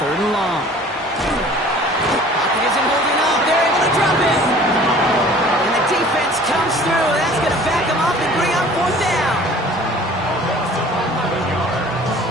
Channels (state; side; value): normal; both; correlation 0.48